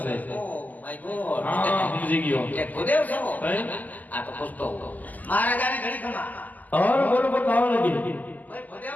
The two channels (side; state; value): right; late; 0.081 ms